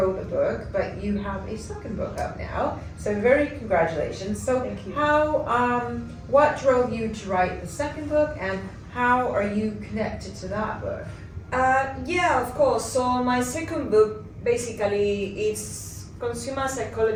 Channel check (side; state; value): both; identical; correlation 1.00